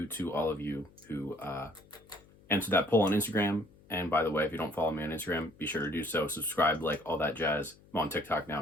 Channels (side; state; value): left; noise; hum, 26 dB below the sound